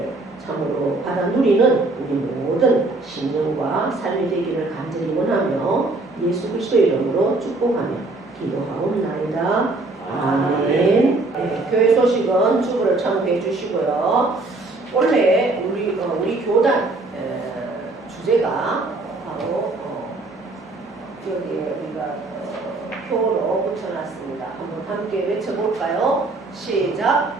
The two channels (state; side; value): quieter; left; 3.2 dB